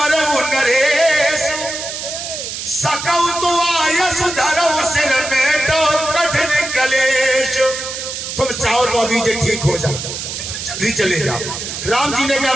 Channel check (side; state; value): right; noise; hiss, 6 dB below the sound